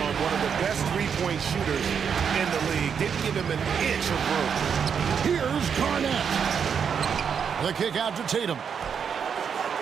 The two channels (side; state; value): left; quieter; 7.1 dB